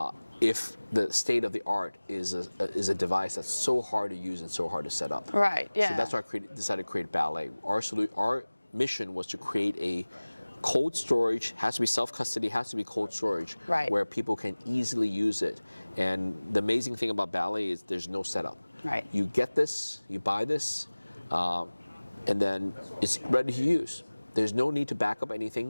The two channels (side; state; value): both; inverted; correlation -1.00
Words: if the state of the art is a device that's so hard to use and so hard to set up? Right. Yeah. So that's why I decided to create Ballet. Our mission was to create a cold storage, has to be self-custody, has to be cold storage, where people can easily use it. And the amazing thing about Ballet is there's no setup. Right. You get this, you buy this, and then it's ready to use. There's no need to back up